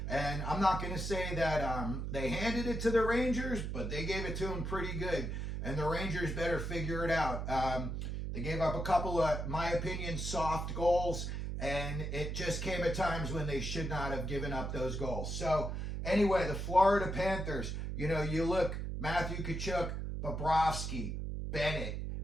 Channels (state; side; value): noise; right; hum, 3 dB below the sound